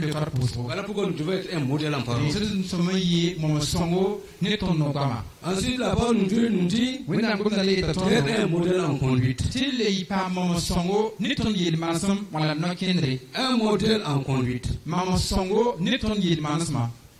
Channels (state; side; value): identical; both; correlation 1.00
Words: Voilà pourquoi nous devons être un modèle en parole. Ensuite, la parole de Dieu nous dit être un modèle en conduite. Un modèle en conduite.